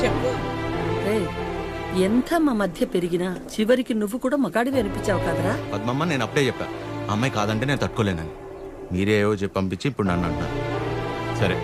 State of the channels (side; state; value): both; identical; correlation 1.00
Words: చెప్పు. రేయ్, ఎంత మా మధ్య పెరిగినా చివరికి నువ్వు కూడా మగాడివి అనిపించావు కదరా. పద్మమ్మ, నేను అప్పుడే చెప్పా ఆ అమ్మాయి కాదంటే నేను తట్టుకోలేనని. మీరే ఏవో చెప్పి పంపించి ఇప్పుడు నన్ను అంటున్నారు. సరే,